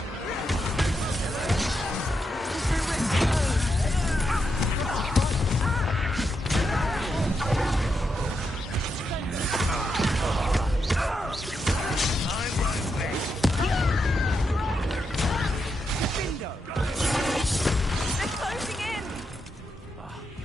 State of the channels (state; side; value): normal; both; correlation 0.83